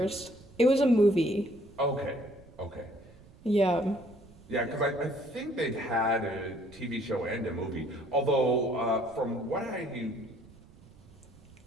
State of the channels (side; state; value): right; noise; rumble, 23 dB below the sound